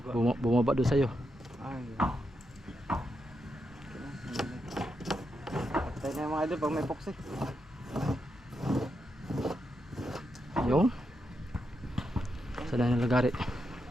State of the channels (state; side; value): normal; both; correlation 0.84